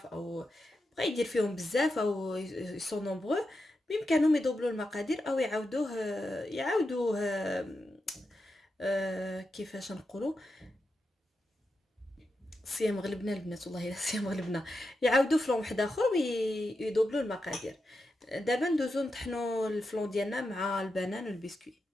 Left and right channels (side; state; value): both; normal; correlation 0.88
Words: او بغى يدير فيهم بزاف او يسون نومبرو، بامكانهم يدوبلوا المقادير او يعاودوه كيفاش نقولوا، صيام غلبنا البنات، والله الا صيام غلبنا. يعاودوا فلون واحد اخر ويدوبلوا المقادير. دابا ندوزو نطحنوا الفلون ديالنا مع البنان والبسكوي.